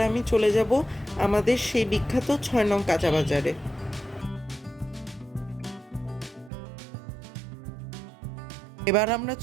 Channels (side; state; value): left; drops out; at 6.5 s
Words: আমি চলে যাব আমাদের সেই বিখ্যাত 6 নং কাঁচা বাজারে। এবার আমরা